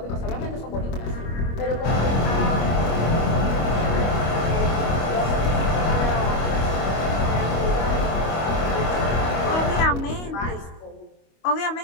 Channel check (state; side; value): late; right; 25 ms